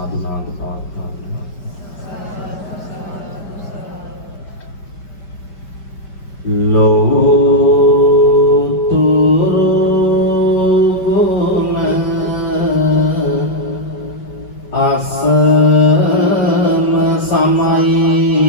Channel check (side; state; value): right; late; 5.1 ms